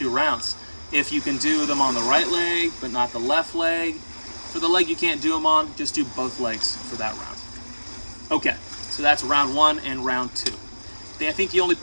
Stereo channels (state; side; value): inverted; both; correlation -1.00